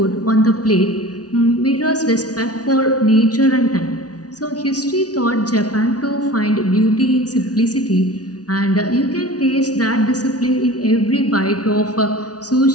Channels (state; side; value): late; right; 0.68 ms